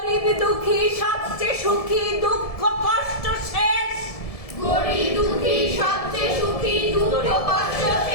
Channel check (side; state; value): right; late; 1.7 ms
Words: দুঃখী সবচেয়ে সুখী দুঃখ কষ্ট শেষ।